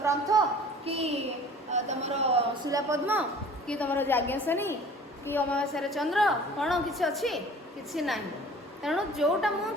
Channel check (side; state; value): both; normal; correlation 0.46